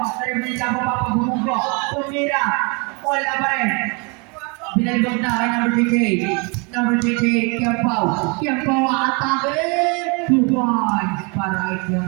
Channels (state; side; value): quieter; left; 31.7 dB